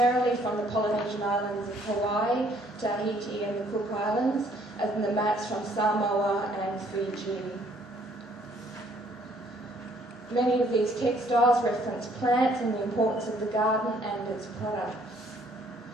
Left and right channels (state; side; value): normal; both; correlation 0.63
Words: from the Polynesian islands of Hawaii, Tahiti and the Cook Islands, and the mats from Samoa and Fiji. Many of these textiles reference plants and the importance of the garden and its products.